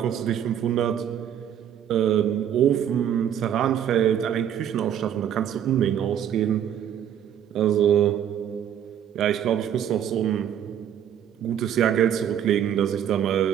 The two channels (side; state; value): left; quieter; 9.7 dB